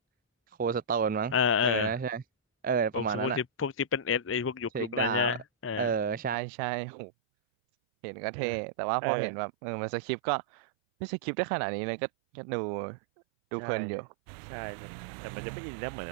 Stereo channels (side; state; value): left; drops out; at 6.4 s